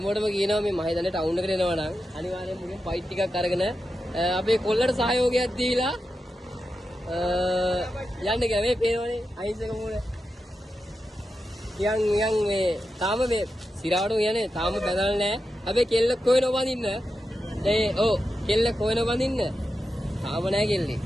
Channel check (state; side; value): normal; both; correlation 0.89